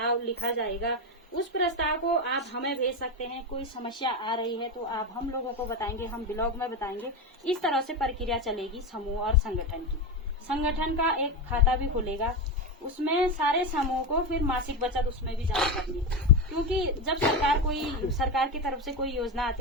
लिखा जाएगा। उस प्रस्ताव को आप हमें भेज सकते हैं। कोई समस्या आ रही है तो आप हम लोगों को बताएंगे, हम ब्लॉग में बताएंगे। इस तरह से प्रक्रिया चलेगी समूह और संगठन की। संगठन का एक खाता भी खुलेगा, उसमें सारे समूह को फिर मासिक बचत उसमें भी जमा करनी है। क्योंकि जब सरकार की तरफ से कोई योजना आती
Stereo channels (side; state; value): both; normal; correlation 0.14